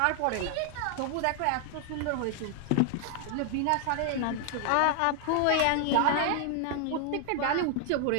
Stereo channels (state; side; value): different; both; correlation 0.00